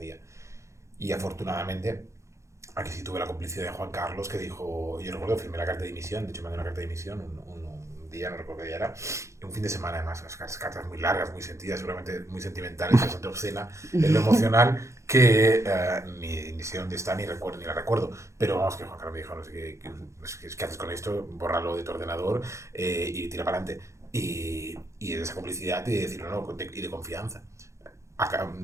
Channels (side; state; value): left; late; 0.14 ms